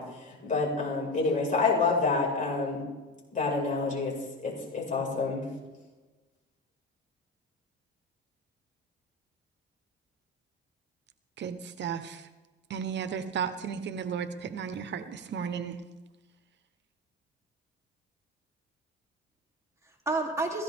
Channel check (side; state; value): both; normal; correlation 0.20